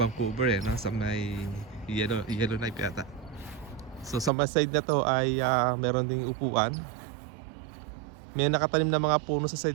eh, no? Sa may Yellowknife yata. So sa may side na to ay meron ding upuan. May nakatanim na mga puno sa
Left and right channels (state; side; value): drops out; left; at 4.3 s